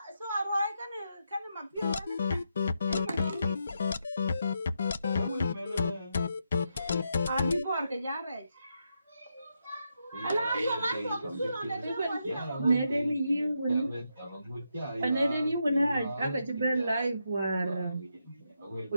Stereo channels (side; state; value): both; inverted; correlation -0.83